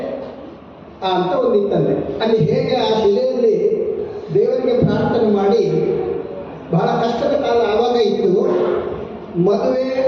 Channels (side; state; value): both; identical; correlation 1.00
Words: ಅಂತ ಒಂದು ಇತ್ತಂತೆ. ಅಲ್ಲಿ ಹೇಗೆ ಆ ಶಿಲೆಯಲ್ಲಿ ದೇವರಿಗೆ ಪ್ರಾರ್ಥನೆ ಮಾಡಿ, ಬಹಳ ಕಷ್ಟದ ಕಾಲ ಆವಾಗ ಇತ್ತು. ಮದುವೆ